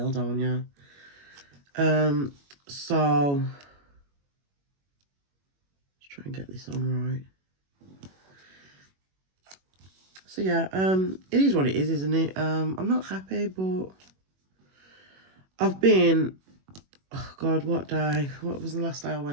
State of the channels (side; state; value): left; late; 21 ms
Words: don't you? So, let's try and get this on right. So yeah, it is what it is, isn't it? I'm not happy, but I've been, oh God, what day? What was the last day I